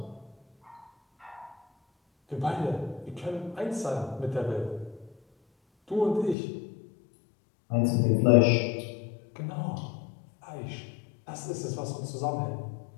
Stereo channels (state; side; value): drops out; right; at 6.4 s